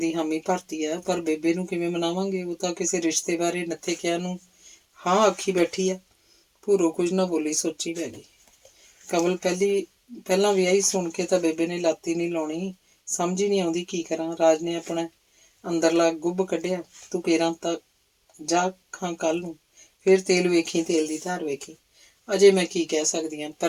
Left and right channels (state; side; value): identical; both; correlation 1.00